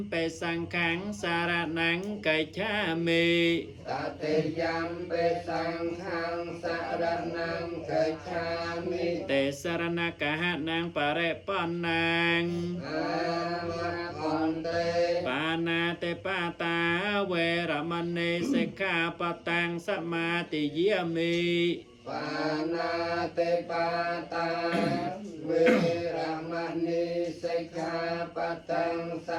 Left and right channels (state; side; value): identical; both; correlation 1.00